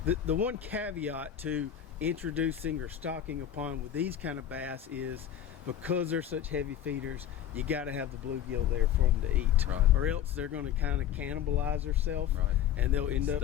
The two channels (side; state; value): right; quieter; 10.2 dB